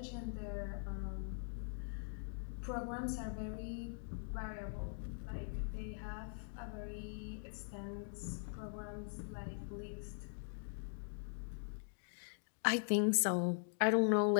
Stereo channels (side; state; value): right; silent; digital silence